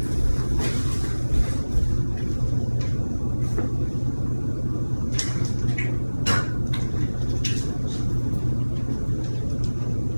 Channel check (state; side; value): inverted; both; correlation -1.00